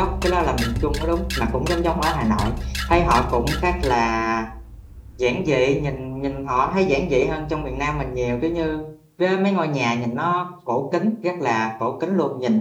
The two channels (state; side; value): identical; both; correlation 1.00